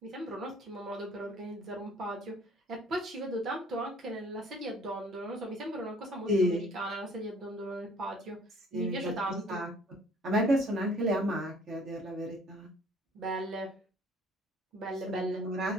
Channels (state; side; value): normal; both; correlation 0.55